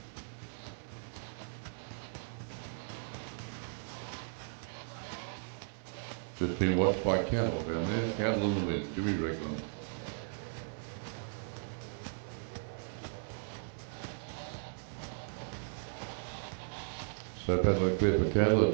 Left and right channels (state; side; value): silent; left; digital silence